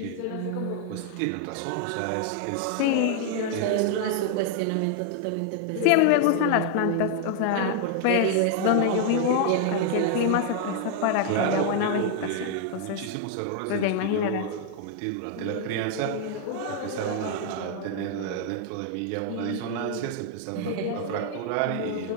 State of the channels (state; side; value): different; both; correlation 0.00